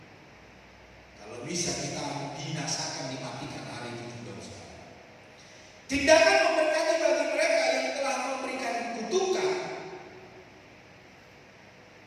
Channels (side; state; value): both; identical; correlation 1.00